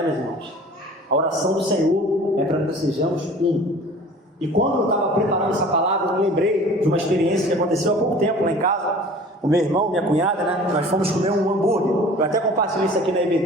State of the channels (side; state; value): both; normal; correlation 0.45